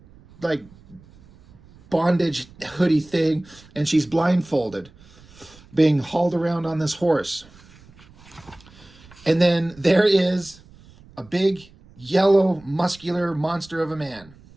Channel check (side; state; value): right; noise; rumble, 25 dB below the sound